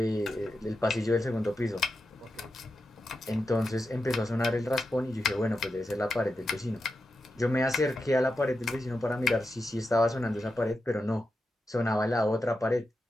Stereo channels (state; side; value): normal; both; correlation 0.89